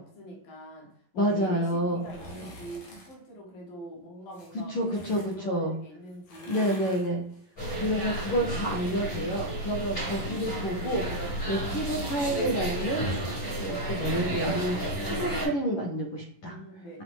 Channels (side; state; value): right; late; 10 ms